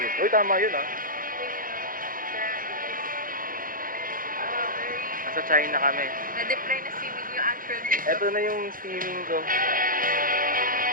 Uy, tama yun ah. Nasa China kami. Na-deploy na si Will yung actual dito. Ito na yung steaming ko.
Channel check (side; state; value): left; late; 0.40 ms